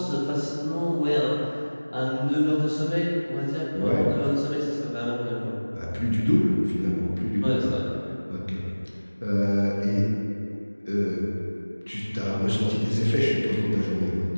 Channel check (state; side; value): inverted; both; correlation -1.00